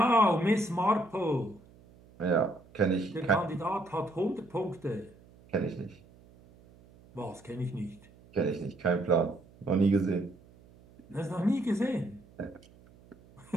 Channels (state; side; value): noise; right; hum, 25 dB below the sound